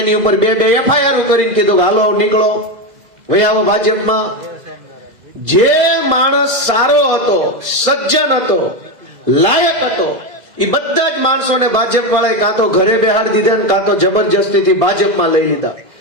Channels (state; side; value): late; left; 2.0 ms